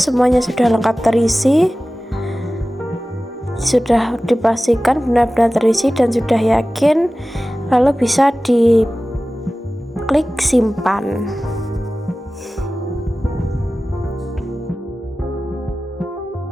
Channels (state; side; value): normal; both; correlation 0.96